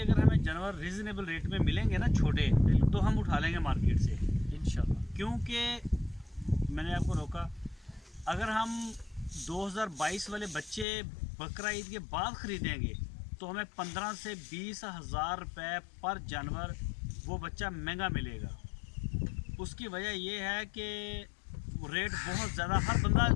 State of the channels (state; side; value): drops out; right; at 10.9 s